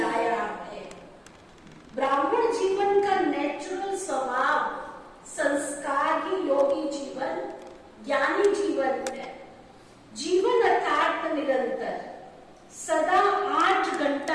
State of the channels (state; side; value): identical; both; correlation 1.00